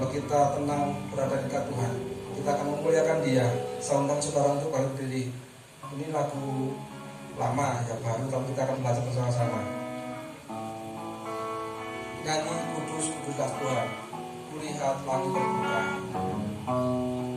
kita tenang berada dekat Tuhan, kita akan memuliakan Dia. Saya undang saudara untuk berdiri. Ini lagu lama ya, baru, tapi kita akan belajar bersama-sama. Nyanyi kudus kuduslah Tuhan, kulihat langit terbuka.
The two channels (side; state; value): both; identical; correlation 1.00